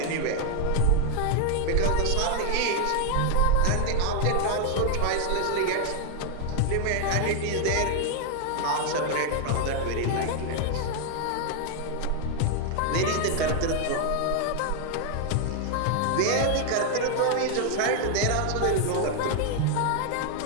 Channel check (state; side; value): different; both; correlation 0.00